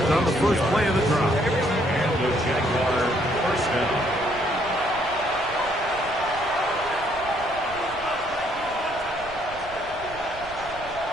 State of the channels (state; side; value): noise; right; rumble, 18 dB below the sound